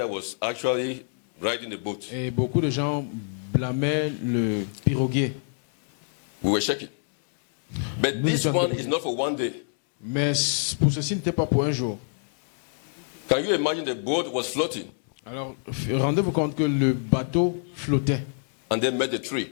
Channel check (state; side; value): silent; right; 61 dB below the other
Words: was actually riding the boat. Et beaucoup de gens blâmaient le piroguier. We were shaking. But Nous this sommes one debout. is not for one day. Mais pour ceci, n'était pas pour un jour. Can you imagine the boat was floating Alors, rendez-vous compte que le bateau flottait. and then met a